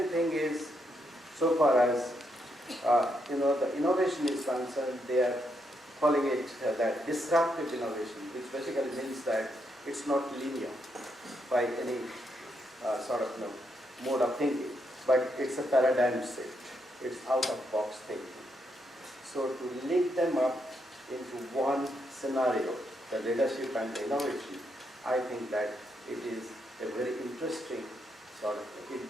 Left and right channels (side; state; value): both; normal; correlation 0.79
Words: thing is, so far as the innovation is concerned, they are calling it that disruptive innovation, which basically means that it's not linear by any mode of thinking, but it's a paradigm shift. It's out-of-box thinking. So to link them up into one scenario, the leadership and the innovation, I think that it is a very interesting it